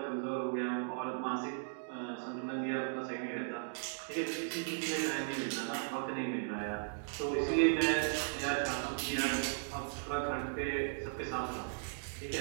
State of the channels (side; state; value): left; silent; digital silence